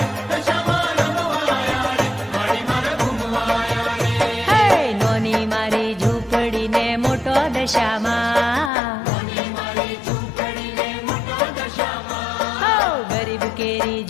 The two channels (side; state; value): right; drops out; at 8.7 s